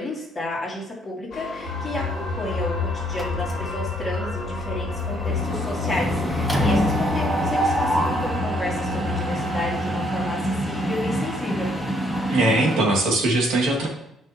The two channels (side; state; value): both; normal; correlation 0.68